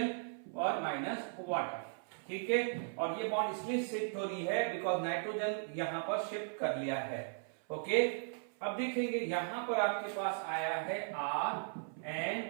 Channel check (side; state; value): left; silent; 53 dB below the other